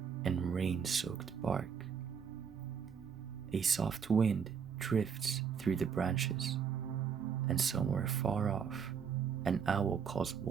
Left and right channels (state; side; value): quieter; left; 6.9 dB